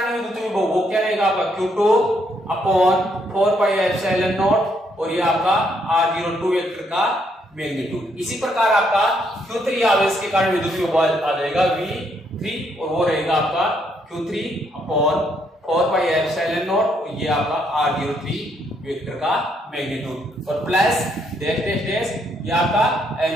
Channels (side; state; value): both; normal; correlation 0.73